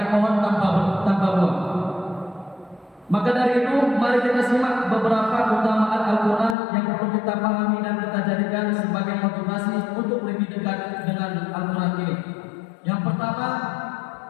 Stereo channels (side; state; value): right; drops out; at 6.6 s